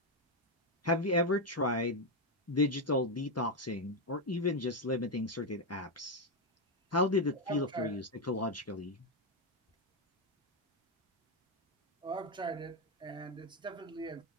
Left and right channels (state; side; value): normal; both; correlation 0.06